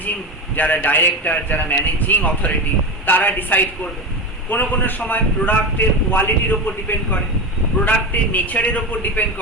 যারা ডাইরেক্টর, যারা ম্যানেজিং অথরিটি, তারা ডিসাইড করবে। কোনো কোনো সময় প্রোডাক্টের কোয়ালিটির ওপর ডিপেন্ড করে, প্রোডাক্টের নেচারের ওপর ডিপেন্ড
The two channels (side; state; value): both; normal; correlation 0.21